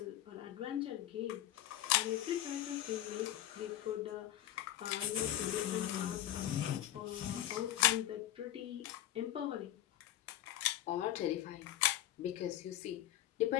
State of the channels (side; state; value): right; quieter; 13.0 dB